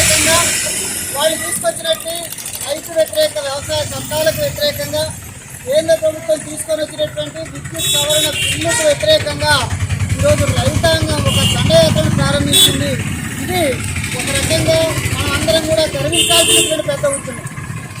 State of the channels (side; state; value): both; identical; correlation 1.00